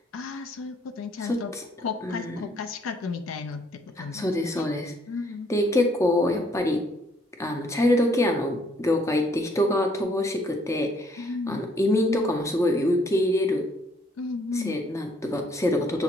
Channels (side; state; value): both; normal; correlation 0.66